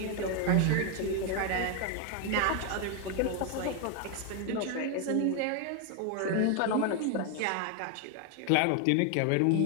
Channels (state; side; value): different; both; correlation 0.01